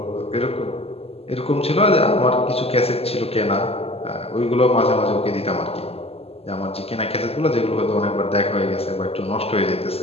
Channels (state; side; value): late; right; 0.29 ms